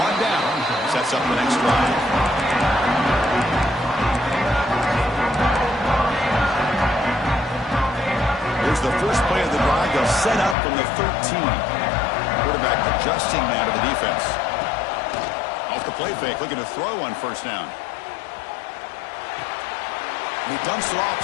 1 down. Sets up the next drive. Here's the first play of the drive. They'll set up from the 13. Quarterback adjusting now to the defense. Off the play fake, looking to throw on first down. And he dumps it off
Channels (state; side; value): drops out; right; at 10.6 s